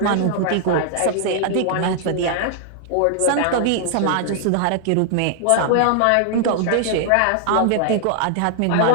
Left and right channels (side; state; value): both; different; correlation 0.00